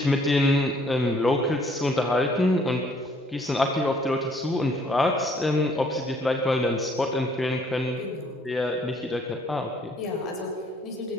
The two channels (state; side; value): normal; both; correlation 0.62